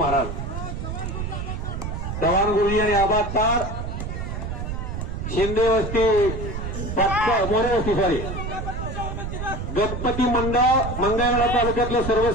चव्हाण गुरुजी आणि आबाद तार शिंदे वस्ती मोरे वस्ती सॉरी गणपती मंडळ मंगळवेढा तालुक्यातलं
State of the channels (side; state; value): right; noise; rumble, 5 dB below the sound